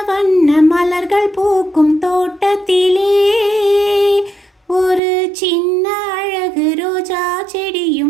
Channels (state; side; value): drops out; left; at 5.0 s